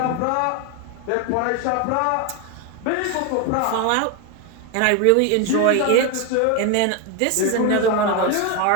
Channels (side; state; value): both; different; correlation 0.02